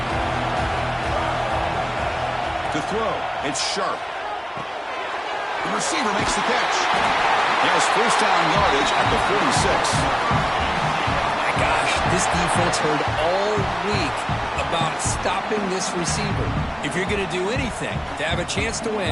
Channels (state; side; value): identical; both; correlation 1.00